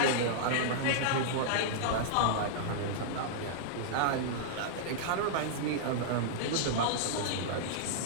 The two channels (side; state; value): both; different; correlation -0.01